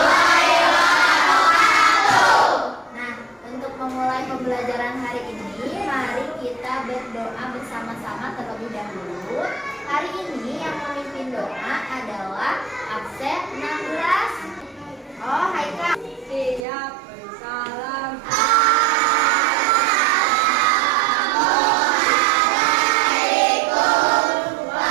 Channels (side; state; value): left; drops out; at 16.7 s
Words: Nah, untuk memulai pembelajaran hari ini, mari kita berdoa bersama-sama terlebih dahulu. Hari ini yang memimpin doa adalah absen 16. Oh, hai Kak. Siap, bersalam.